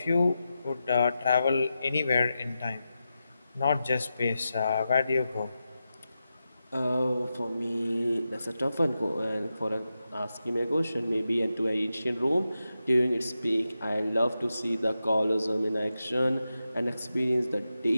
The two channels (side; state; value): both; inverted; correlation -0.90